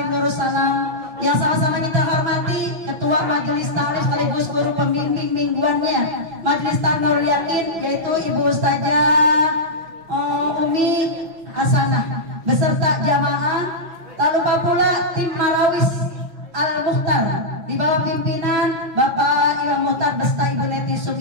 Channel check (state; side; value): late; left; 6.0 ms